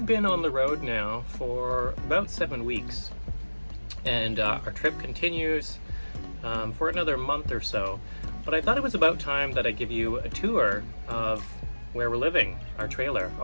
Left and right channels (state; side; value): inverted; both; correlation -1.00